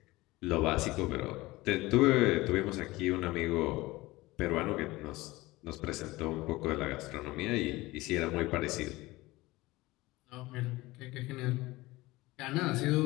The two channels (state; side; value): quieter; right; 19.9 dB